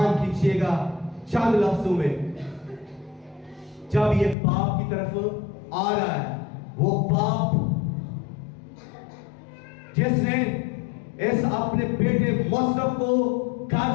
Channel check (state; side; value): drops out; right; at 4.4 s